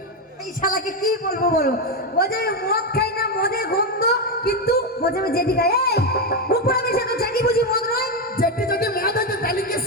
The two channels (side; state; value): both; normal; correlation 0.08